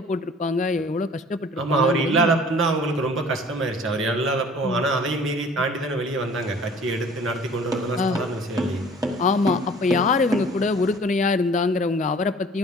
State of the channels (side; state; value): both; normal; correlation 0.50